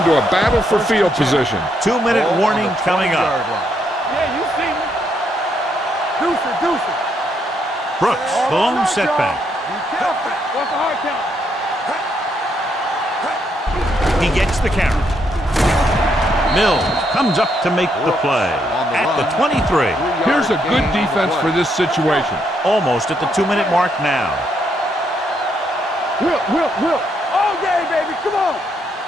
a battle for field position. 2-minute warning coming up. Yeah, you see me. Deuce it. Brooks, the lone setback. Be careful. What's the hard count? He gets the carry. Mills comes up to make the play at the 23. Here's a good defense for this situation. Almost at the 2-minute mark now. Will. All day, baby. Come on.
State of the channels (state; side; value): normal; both; correlation 0.75